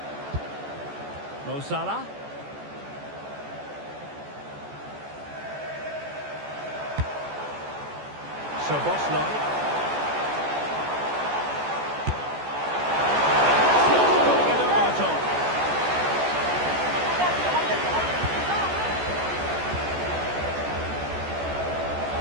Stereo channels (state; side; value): late; left; 14 ms